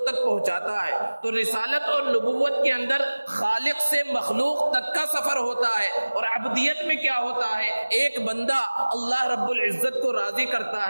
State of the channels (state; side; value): inverted; both; correlation -1.00